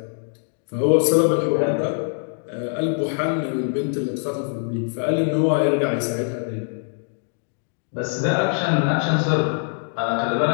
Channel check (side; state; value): right; silent; digital silence